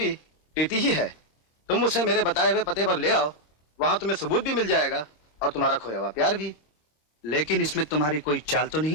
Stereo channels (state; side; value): late; right; 26 ms